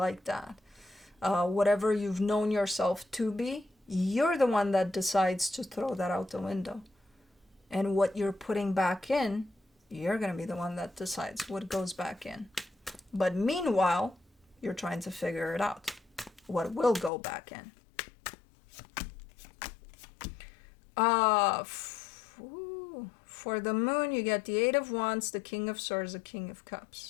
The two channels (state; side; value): drops out; right; at 17.1 s